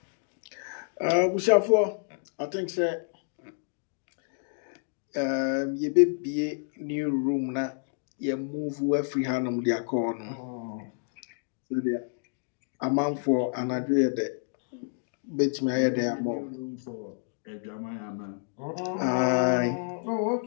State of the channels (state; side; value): silent; right; digital silence